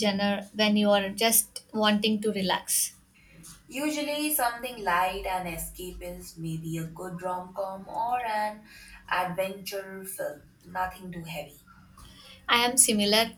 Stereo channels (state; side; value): identical; both; correlation 1.00